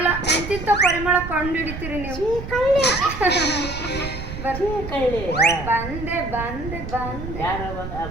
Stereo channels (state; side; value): noise; right; rumble, 9 dB below the sound